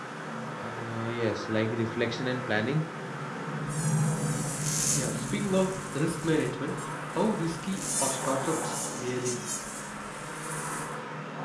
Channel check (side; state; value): both; identical; correlation 1.00